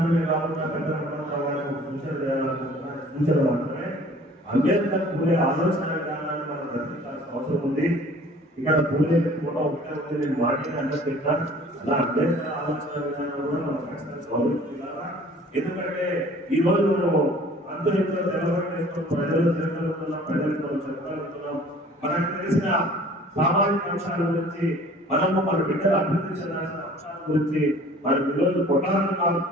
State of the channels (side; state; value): both; normal; correlation 0.50